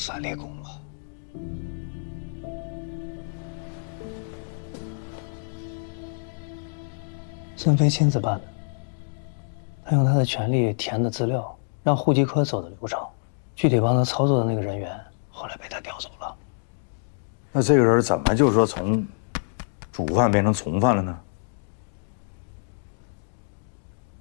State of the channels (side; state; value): right; silent; digital silence